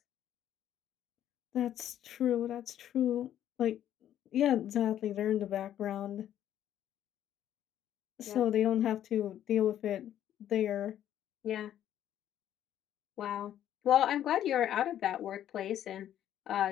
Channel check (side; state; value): right; quieter; 11.1 dB